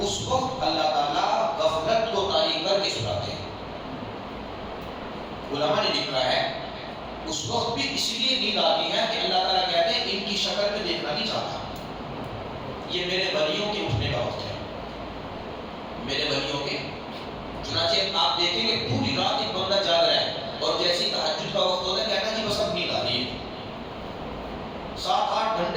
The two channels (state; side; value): identical; both; correlation 1.00